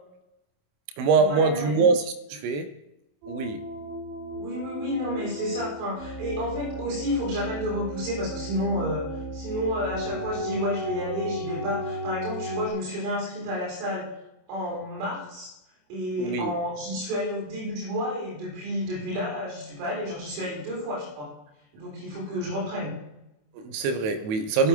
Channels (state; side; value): late; left; 27 ms